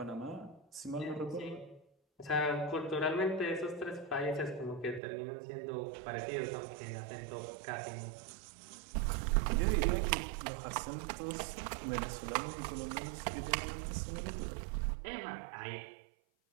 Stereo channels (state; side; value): drops out; left; at 5.0 s